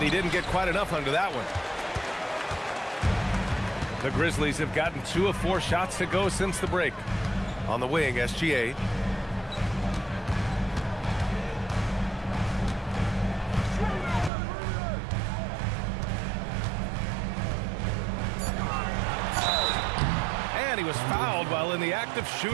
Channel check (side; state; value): left; drops out; at 14.3 s